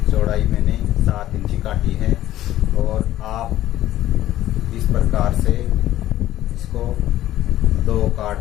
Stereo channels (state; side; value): quieter; right; 13.8 dB